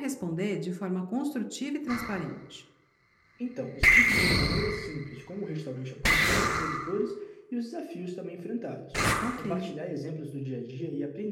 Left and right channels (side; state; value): both; identical; correlation 1.00